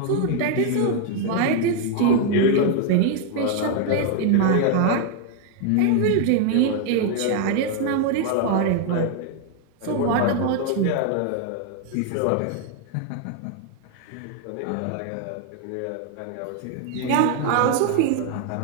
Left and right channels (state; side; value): different; both; correlation 0.00